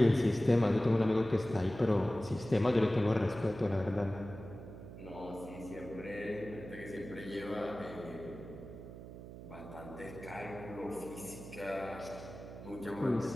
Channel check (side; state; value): right; noise; hum, 13 dB below the sound